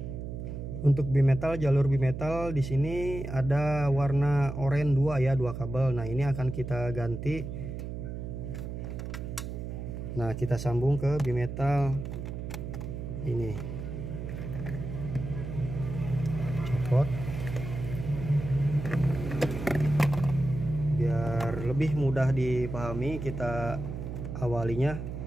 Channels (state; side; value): noise; right; hum, 6 dB below the sound